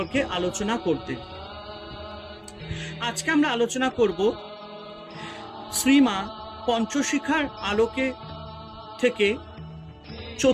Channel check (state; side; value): identical; both; correlation 1.00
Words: আলোচনা করতে। আজকে আমরা আলোচনা করব শ্রীমা পঞ্চশিখার আলোকে থেকে